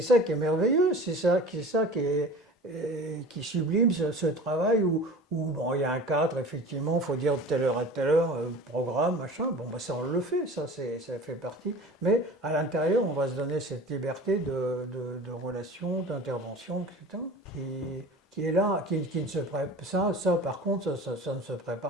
qui est merveilleux. C'est ça qui sublime ce travail où bon, il y a un cadre, effectivement, il faut dire de telle heure à telle heure, programme, machin. Bon, bah, ça, on le fait, ça fait partie. Mais à l'intérieur, on va se donner cette liberté de relation, d'intervention, etc., qui est là, qui ne se prépare. Ça, par contre, ça ne se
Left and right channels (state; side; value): normal; both; correlation 0.39